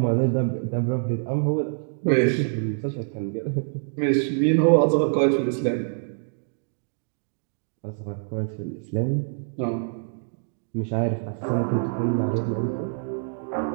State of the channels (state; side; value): silent; left; digital silence